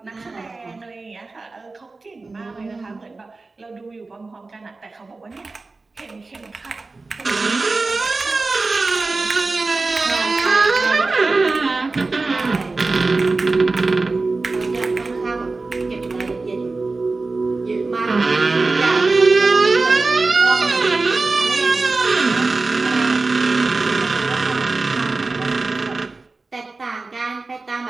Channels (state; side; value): quieter; left; 3.6 dB